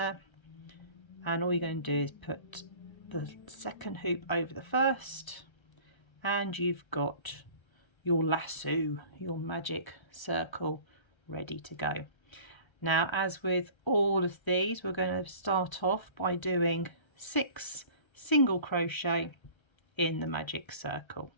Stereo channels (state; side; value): late; right; 1.3 ms